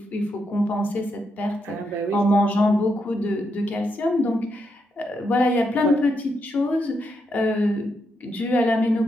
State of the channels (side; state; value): both; normal; correlation 0.81